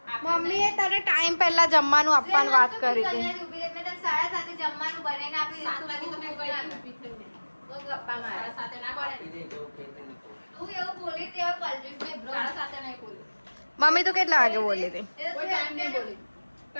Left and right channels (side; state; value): both; inverted; correlation -1.00